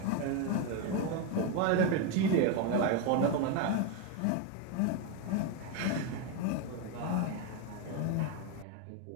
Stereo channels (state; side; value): different; both; correlation 0.02